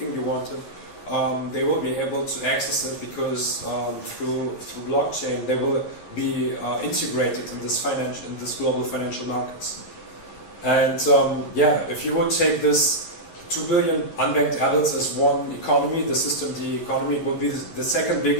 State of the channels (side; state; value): right; late; 11 ms